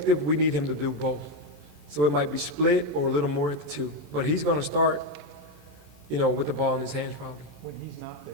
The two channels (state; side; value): late; left; 27 ms